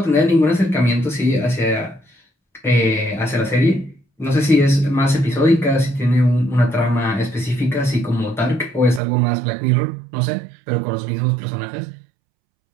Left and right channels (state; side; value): drops out; left; at 9.0 s